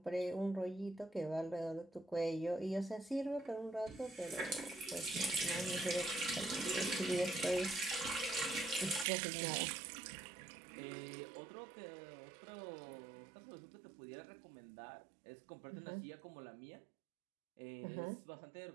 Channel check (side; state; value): left; drops out; at 9.1 s